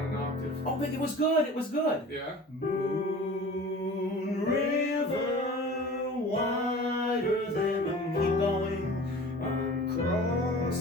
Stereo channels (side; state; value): both; normal; correlation 0.41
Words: an octave. Oh, but it was good. It was good. Yeah. Moon River, wider than a moon. Keep going. I'm